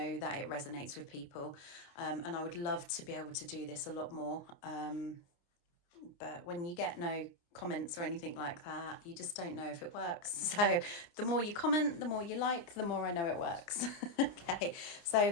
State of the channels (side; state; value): right; late; 29 ms